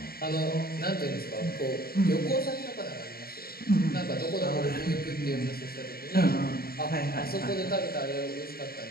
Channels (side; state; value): right; late; 0.44 ms